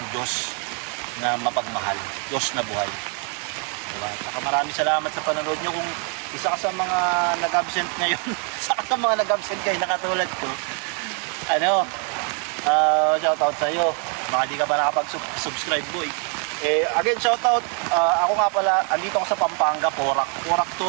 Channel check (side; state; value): left; quieter; 40.0 dB